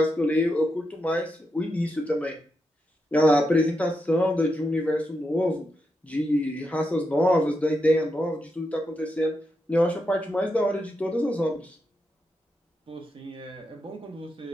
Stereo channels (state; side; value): normal; both; correlation 0.85